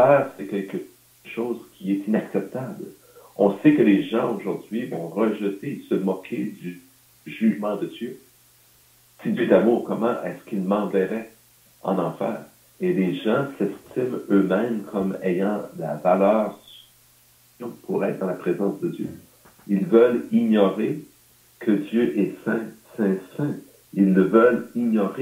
c'est quelque chose qui est inacceptable. On sait que les gens aujourd'hui vont rejeter, se moquer du jugement de Dieu. Si Dieu est d'amour, comment est-ce qu'il m'enverrait en enfer? Et les gens s'estiment eux-mêmes comme ayant la valeur pour être dans la présence de Dieu. Ils veulent ignorer que Dieu est saint, saint, saint. Ils ne veulent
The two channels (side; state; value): both; identical; correlation 1.00